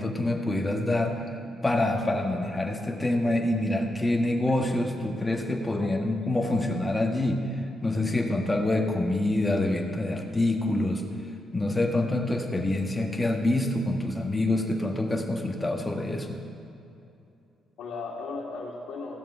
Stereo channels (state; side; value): normal; both; correlation 0.86